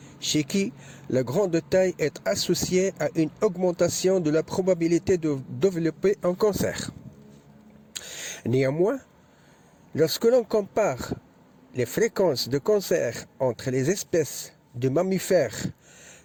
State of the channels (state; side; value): identical; both; correlation 1.00